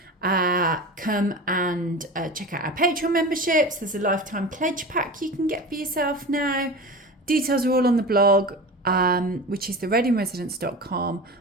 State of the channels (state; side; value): normal; both; correlation 0.31